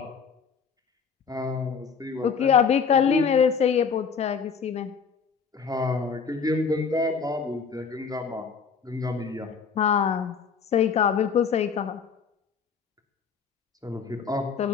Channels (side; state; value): right; quieter; 6.0 dB